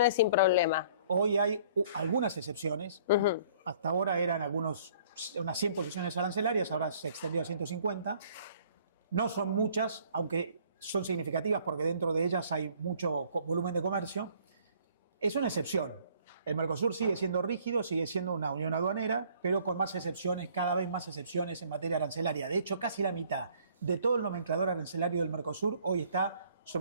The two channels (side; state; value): both; inverted; correlation -0.57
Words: sin problema. Hoy hay algunas excepciones. Hasta ahora eran unas 100 posiciones arancelarias, ahora se extendió a 150. No son muchas, aunque son significativas porque dentro de ellas hay mucho volumen de comercio. Es una excepción. El Mercosur sigue siendo rígido, sigue siendo una unión aduanera, pero con más excepciones, cada vez más excepciones en materia arancelaria. De hecho, casi la mitad de todo el nomenclador arancelario del Mercosur hoy está